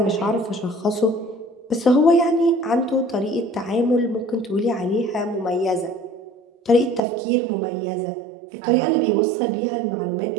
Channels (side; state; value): left; drops out; at 7.0 s